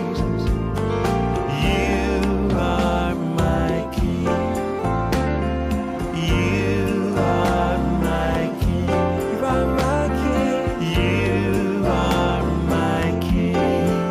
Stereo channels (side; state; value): both; identical; correlation 1.00